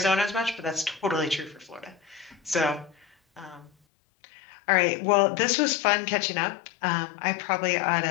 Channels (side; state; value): right; drops out; at 3.7 s